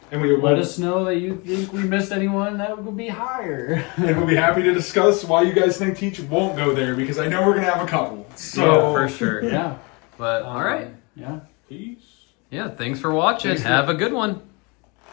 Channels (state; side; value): quieter; right; 29.5 dB